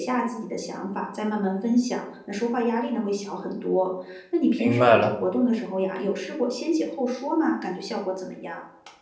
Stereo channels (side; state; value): both; identical; correlation 1.00